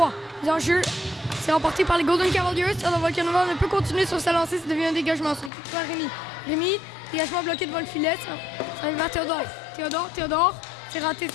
Les enjeux, c'est remporté par les Golden Cavaliers. Théodore Volkanova ne peut continuer sur sa lancée, ça devient un dégagement. C'est récupéré par Rémi. Rémi, dégagement bloqué devant le filet. Ça revient vers Théodore. Théodore, c'est raté.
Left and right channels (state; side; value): drops out; right; at 5.5 s